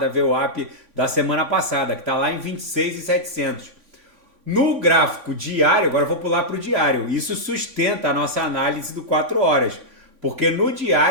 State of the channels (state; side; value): late; left; 3.5 ms